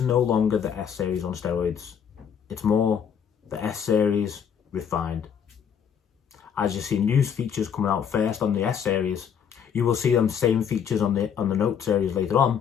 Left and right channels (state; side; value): quieter; right; 7.8 dB